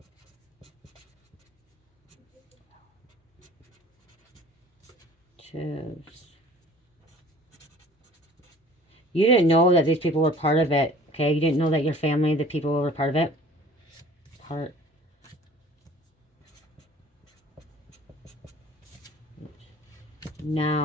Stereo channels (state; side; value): normal; both; correlation 0.49